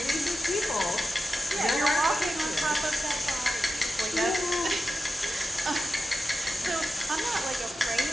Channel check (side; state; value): both; normal; correlation 0.91